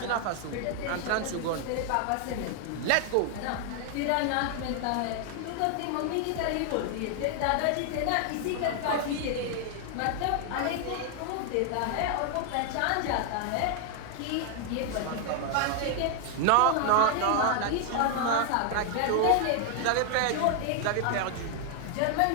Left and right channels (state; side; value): different; both; correlation 0.00